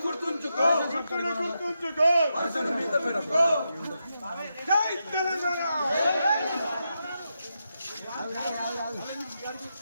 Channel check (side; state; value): both; inverted; correlation -0.86